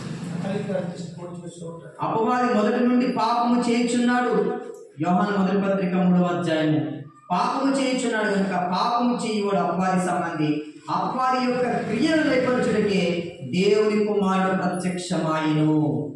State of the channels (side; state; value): both; identical; correlation 1.00